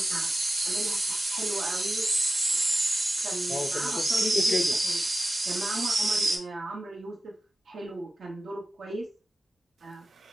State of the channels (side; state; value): both; normal; correlation 0.93